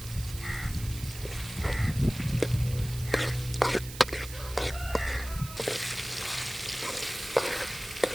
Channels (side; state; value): right; noise; hiss, 13 dB below the sound